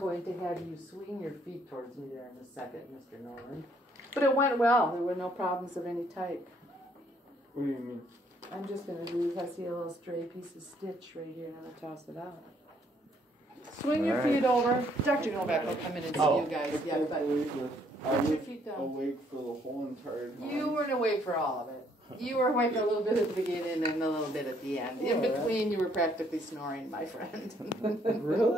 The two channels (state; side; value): normal; both; correlation 0.67